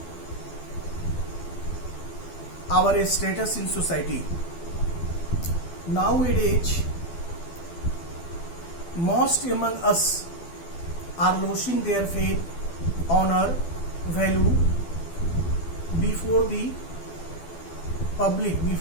our status in society. Nowadays, most among us are losing their faith, honor, value before the public,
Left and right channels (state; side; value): late; right; 12 ms